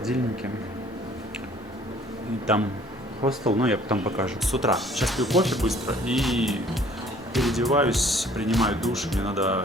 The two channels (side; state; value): both; normal; correlation 0.56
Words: И там хостел, но я потом покажу. С утра. Сейчас пью кофе быстро и переодеваюсь, принимаю душ. Мне надо